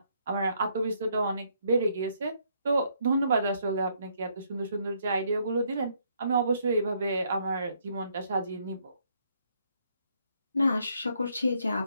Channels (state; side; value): inverted; both; correlation -0.71